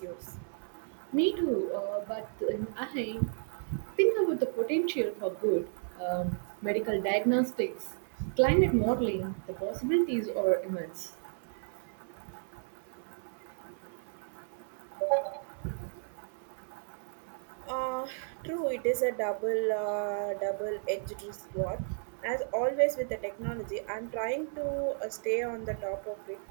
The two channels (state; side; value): silent; left; 56 dB below the other